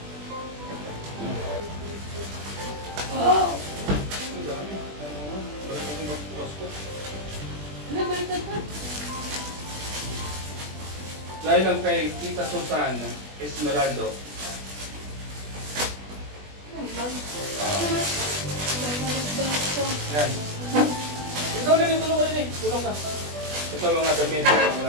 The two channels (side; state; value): left; late; 20 ms